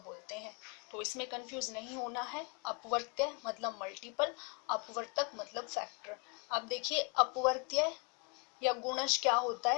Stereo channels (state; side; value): quieter; right; 34.7 dB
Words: बोलते हैं। तो इसमें कंफ्यूज नहीं होना है। अपवर्त्य मतलब मल्टीपल, अपवर्तक मतलब फैक्टर। अब देखिए अपवर्त्य या गुणज क्या होता